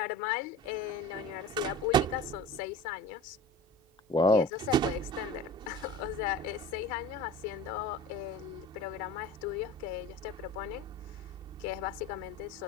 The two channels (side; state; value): both; normal; correlation 0.37